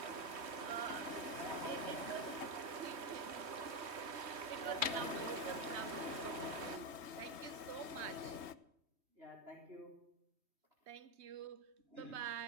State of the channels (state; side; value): late; left; 3.2 ms